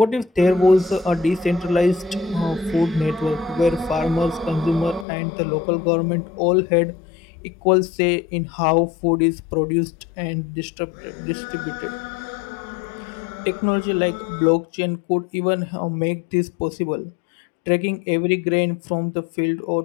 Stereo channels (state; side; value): drops out; right; at 5.1 s